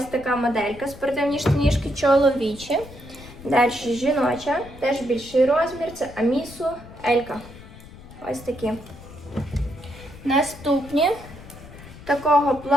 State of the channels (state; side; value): noise; left; rumble, 17 dB below the sound